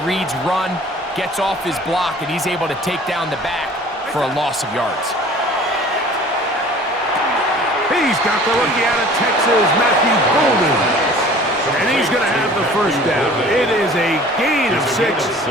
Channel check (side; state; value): both; normal; correlation 0.48